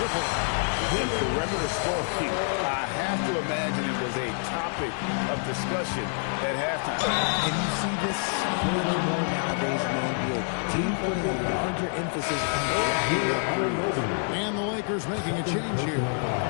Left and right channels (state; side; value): silent; right; 55 dB below the other